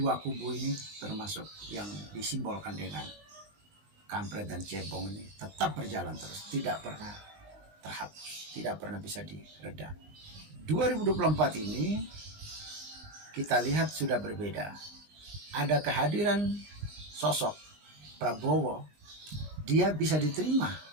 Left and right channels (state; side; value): late; left; 20 ms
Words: kubu ini termasuk yang disimbolkan dengan kampret dan cebong ini tetap berjalan terus, tidak pernah terhapus, tidak pernah bisa diredam. 2024 ini kita lihat sudah berbeda. Ada kehadiran sosok Prabowo, dia bisa diterima